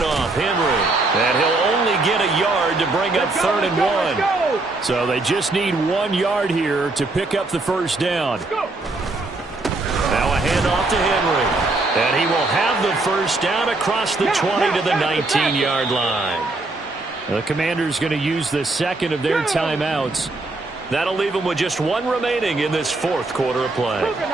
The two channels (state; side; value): quieter; left; 3.1 dB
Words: Henry. And he'll only get a yard to bring up 3rd and 1. So they just need 1 yard here to pick up the first down. Now a handoff to Henry. And he will have the first down across the 20 to the 19-yard line. The Commanders going to use the second of their timeouts. That'll leave them with just one remaining in this fourth quarter of play.